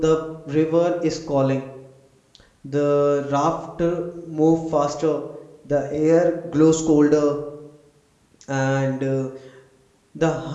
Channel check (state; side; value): identical; both; correlation 1.00